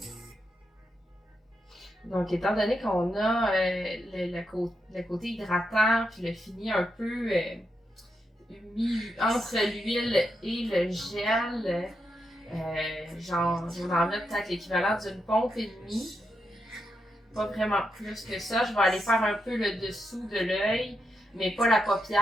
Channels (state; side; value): normal; both; correlation 0.84